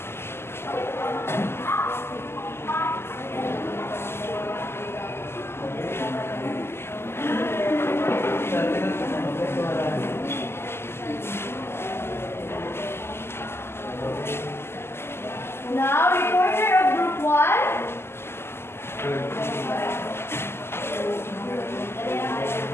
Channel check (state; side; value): late; right; 0.12 ms